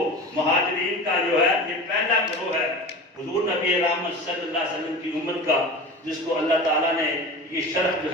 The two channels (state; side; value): normal; both; correlation 0.32